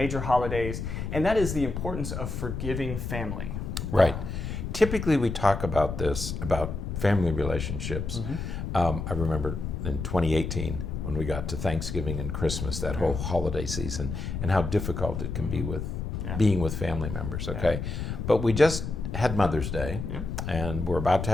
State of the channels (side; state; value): left; noise; rumble, 5 dB below the sound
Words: holidays, and that is the importance of forgiving family. Right. Typically, we talk about this, about family relationships. I remember in 2018, when we got to Thanksgiving and Christmas, that whole holiday season, and how difficult it can be with being with family members, okay? But we just had Mother's Day, and we're about to